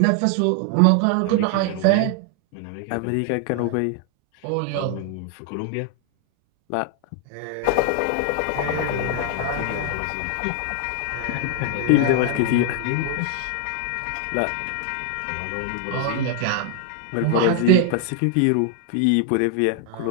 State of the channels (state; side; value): different; both; correlation 0.00